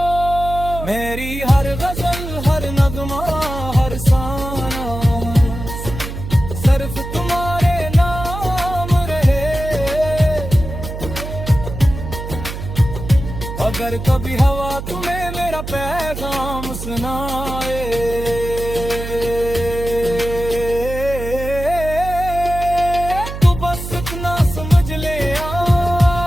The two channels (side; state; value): right; noise; hum, 8 dB below the sound